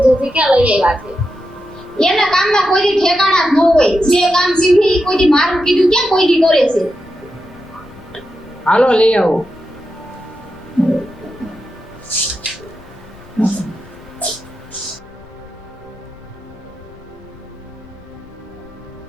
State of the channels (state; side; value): noise; left; rumble, 23 dB below the sound